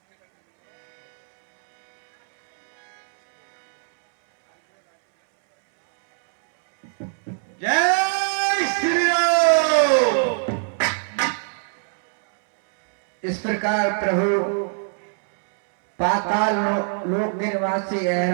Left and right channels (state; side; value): silent; left; 64 dB below the other